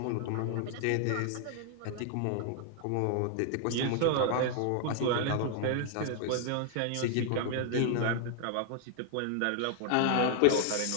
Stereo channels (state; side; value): different; both; correlation 0.00